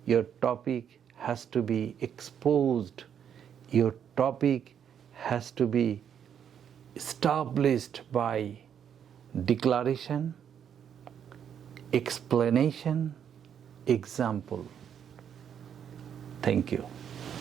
your topic has to be exposed, your topic has to be established by declaration, explanation, example. Thank you.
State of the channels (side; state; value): left; quieter; 8.5 dB